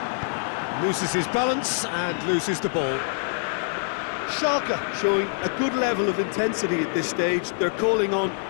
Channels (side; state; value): right; silent; 62 dB below the other